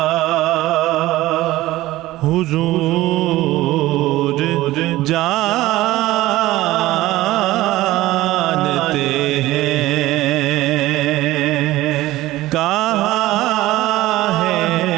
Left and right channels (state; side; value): quieter; left; 16.9 dB